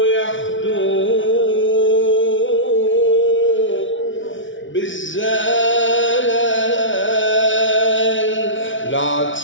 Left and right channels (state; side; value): late; right; 0.56 ms